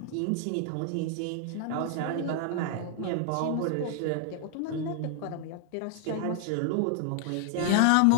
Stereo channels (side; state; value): both; different; correlation 0.00